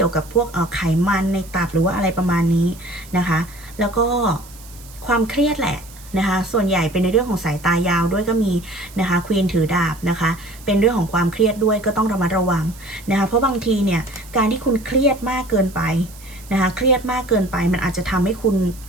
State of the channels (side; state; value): right; noise; hiss, 21 dB below the sound